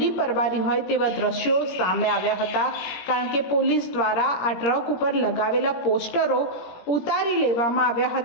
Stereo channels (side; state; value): right; late; 17 ms